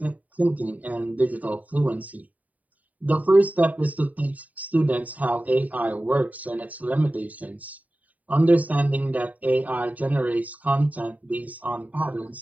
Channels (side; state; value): left; late; 0.073 ms